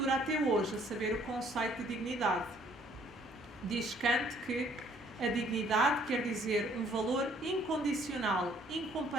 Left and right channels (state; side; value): normal; both; correlation 0.62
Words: até hoje, a saber, o conceito de dignidade. Diz Kant que a dignidade quer dizer um valor incondicional,